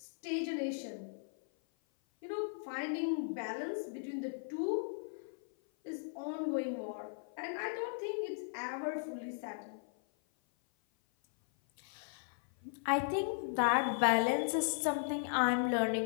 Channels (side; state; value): right; silent; 53 dB below the other